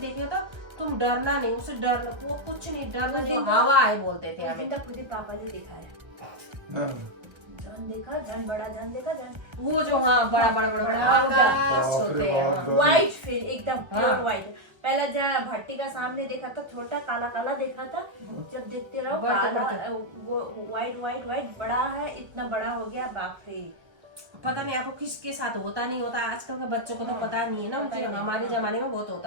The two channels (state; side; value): late; left; 1.3 ms